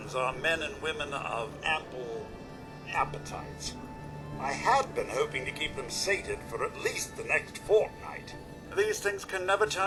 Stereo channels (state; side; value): identical; both; correlation 1.00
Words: are men and women of ample appetites. I had been hoping to keep them sated for at least the next fortnight. These things can never